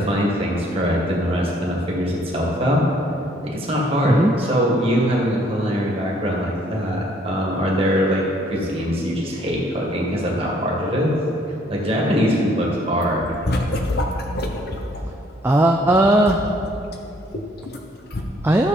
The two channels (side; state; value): both; normal; correlation 0.63